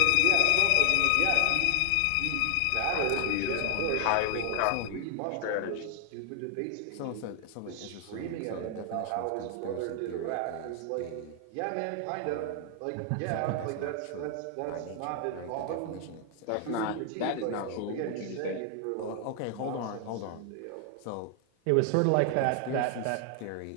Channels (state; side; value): different; both; correlation 0.00